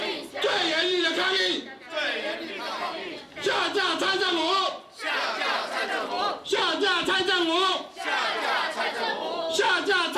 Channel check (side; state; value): both; identical; correlation 1.00